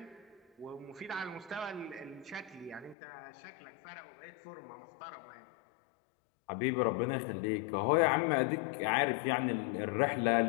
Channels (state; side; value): drops out; right; at 3.0 s